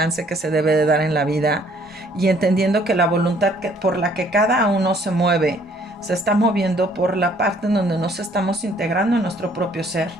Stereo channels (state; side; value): normal; both; correlation 0.61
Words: que se debe de dar en la vida y entendiendo que la voluntad por la que cada uno se mueve se está moviendo por la parte en donde nos estamos integrando en nuestro propio ser.